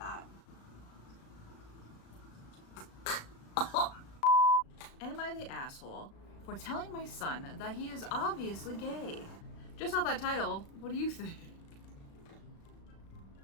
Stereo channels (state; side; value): late; right; 36 ms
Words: Am I the asshole for telling my son that he is obviously gay? Just off that title, what do you think?